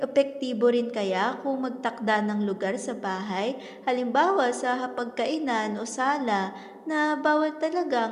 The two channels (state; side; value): identical; both; correlation 1.00